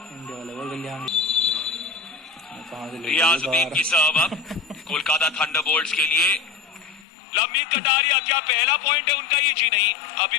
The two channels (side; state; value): right; drops out; at 7.1 s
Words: इंडिया वाले बोल गया कहां से रियाजुद्दीन की सर्व अब कोलकाता थंडरबोल्ट्स के लिए। लंबीन कटारिया, क्या पहला पॉइंट है उनका ये? जी नहीं, अभी